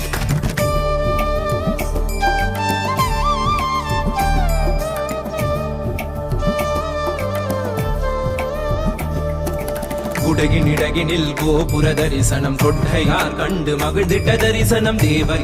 குடகினிடகினில் கோபுர தரிசனம் கொட்டையார் கண்டு மகிழ்ந்திட்ட தரிசனம் தேவர்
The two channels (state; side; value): identical; both; correlation 1.00